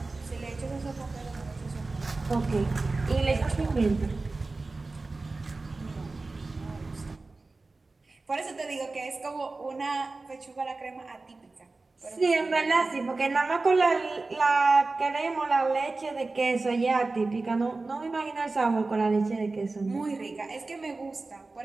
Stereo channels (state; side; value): quieter; left; 3.5 dB